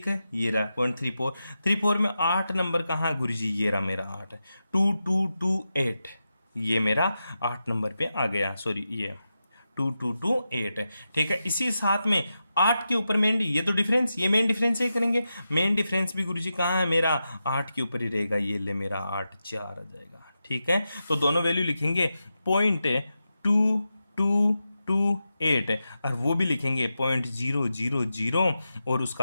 है, ये रहा 0.34 में 8 नंबर कहाँ गुरुजी, ये रहा मेरा 8, 2228, ये मेरा 8 नंबर पे आ गया, सॉरी ये 2228, ठीक है। इसी साथ में 8 के ऊपर मेन, ये तो डिफरेंस, ये मेन डिफरेंस ही करेंगे, मेन डिफरेंस भी गुरुजी कहाँ है मेरा 8 के ऊपर ही रहेगा, ये ले मेरा 8 4 आ जाएगा, ठीक है। तो दोनों वैल्यू लिखेंगे 0.2228, और वो भी लिखेंगे 0.000, और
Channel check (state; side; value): inverted; both; correlation -0.90